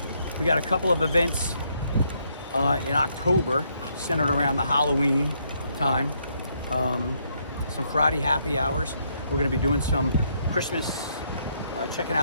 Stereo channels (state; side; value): inverted; both; correlation -0.73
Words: we got a couple of events in October centered around the Halloween time. Some Friday happy hours. We're gonna be doing some Christmas, checking